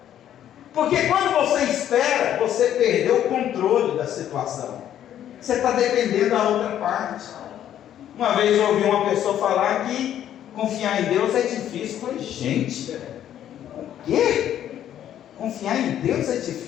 porque quando você espera, você perdeu o controle da situação, você está dependendo da outra parte. Uma vez eu ouvi uma pessoa falar que confiar em Deus é difícil. Eu falei: gente, o quê? Confiar em Deus é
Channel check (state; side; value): quieter; right; 10.9 dB